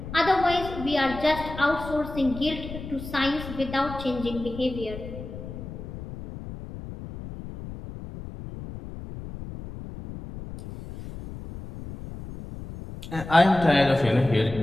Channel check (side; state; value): left; noise; rumble, 11 dB below the sound